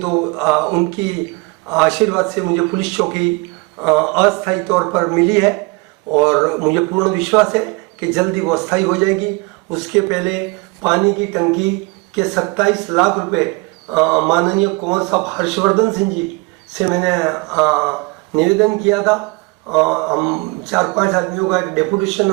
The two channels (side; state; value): left; quieter; 27.1 dB